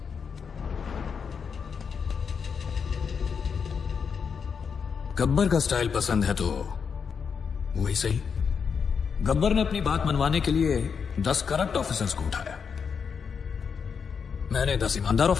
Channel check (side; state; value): right; quieter; 6.3 dB